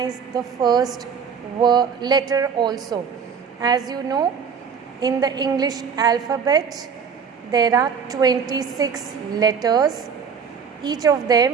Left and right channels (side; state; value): left; quieter; 6.6 dB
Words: the first letter also. As you know, in the English alphabet, there are 26 letters. Each of